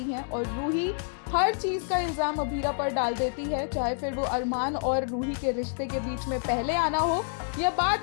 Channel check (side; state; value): right; silent; digital silence